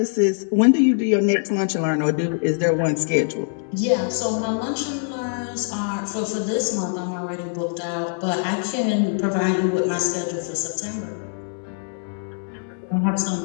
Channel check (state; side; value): silent; right; digital silence